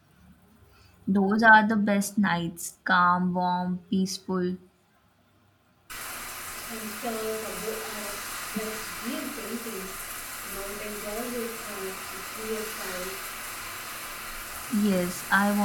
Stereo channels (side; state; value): both; identical; correlation 1.00